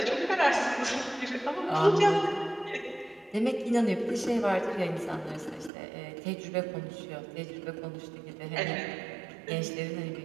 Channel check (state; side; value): drops out; left; at 5.7 s